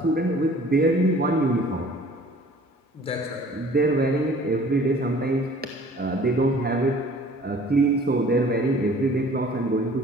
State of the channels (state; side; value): normal; both; correlation 0.51